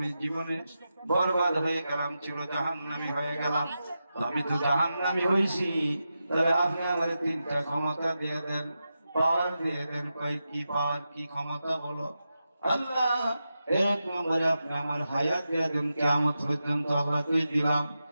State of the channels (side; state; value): both; inverted; correlation -0.90